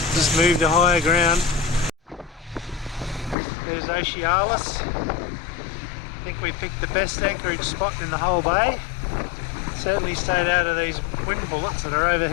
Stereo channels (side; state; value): right; drops out; at 3.4 s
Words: Just moved to higher ground. There's Ocealis. I think we picked the best anchorage spot in the whole bay. Certainly stayed out of these wind bullets that are over